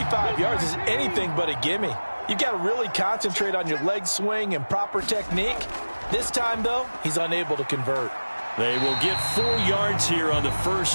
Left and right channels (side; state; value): both; inverted; correlation -1.00